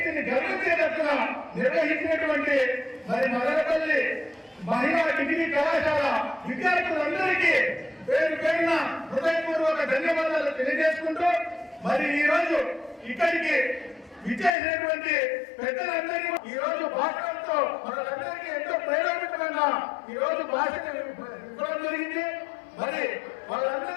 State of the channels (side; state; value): right; drops out; at 14.6 s